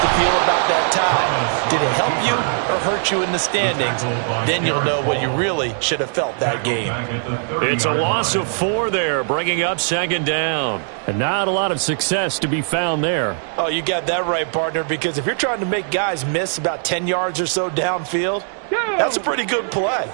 to feel about that tie. Did it help you or hurt you in the standings? Then you'll know what you really should have felt that game. It's a loss of 4 there, bringing up second down. And not a lot of success to be found there. Oh, you got that right, partner, because if you're trying to make guys miss about 10 yards or so downfield, that's a pretty good play.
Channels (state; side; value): silent; left; digital silence